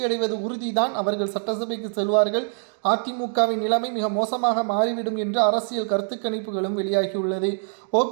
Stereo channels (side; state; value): left; silent; 63 dB below the other